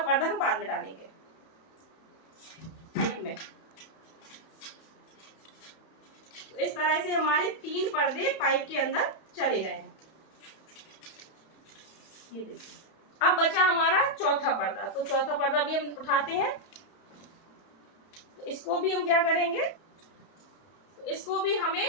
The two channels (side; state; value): right; late; 31 ms